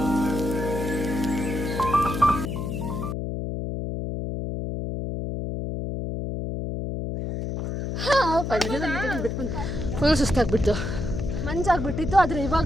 ಸುಸ್ತಾಗ್ಬಿಟ್ಟು ಮಂಜಾಗ್ಬಿಟ್ಟಿತ್ತು, ಆದರೆ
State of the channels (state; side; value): noise; left; hum, 3 dB below the sound